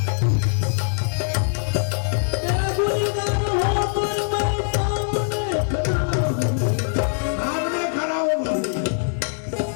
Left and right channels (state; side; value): silent; right; digital silence